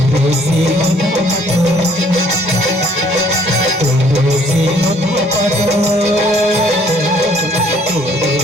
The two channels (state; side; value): normal; both; correlation 0.62